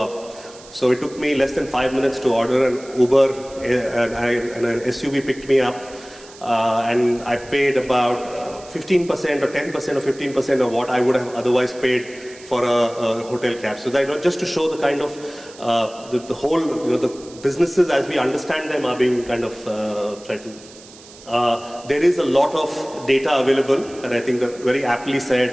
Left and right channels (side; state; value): right; noise; hiss, 21 dB below the sound